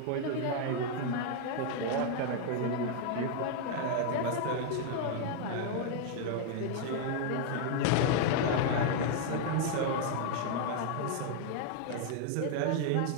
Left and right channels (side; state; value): both; different; correlation 0.00